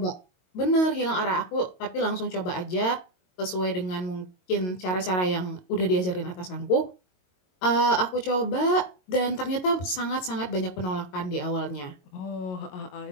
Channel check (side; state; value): right; late; 22 ms